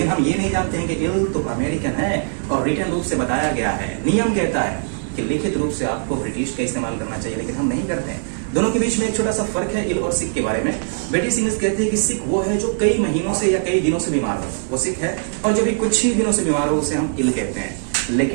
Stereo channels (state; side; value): silent; left; digital silence